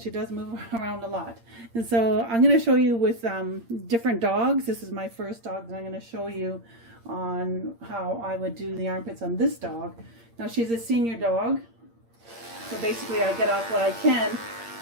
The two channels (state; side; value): late; left; 8.7 ms